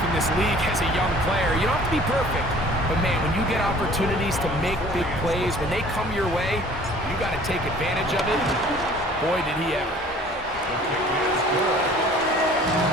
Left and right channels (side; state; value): both; normal; correlation 0.51